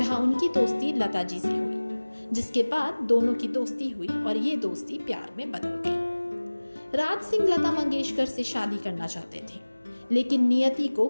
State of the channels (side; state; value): both; inverted; correlation -1.00